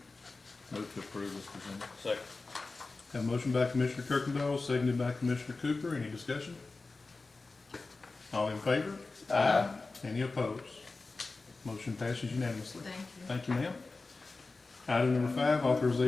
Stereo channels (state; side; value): quieter; right; 3.7 dB